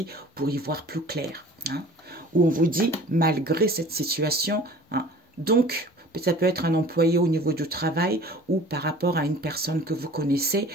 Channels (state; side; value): normal; both; correlation 0.46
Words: pour y voir plus clair. Hein. Où on vous dit, malgré cette situation, hein, donc, ça peut être un employé au niveau du travail ou par rapport à une personne que vous connaissez